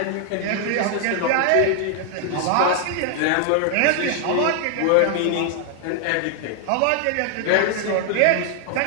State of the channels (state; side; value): different; both; correlation 0.00